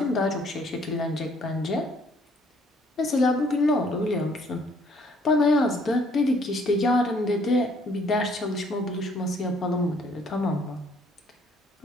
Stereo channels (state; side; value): normal; both; correlation 0.63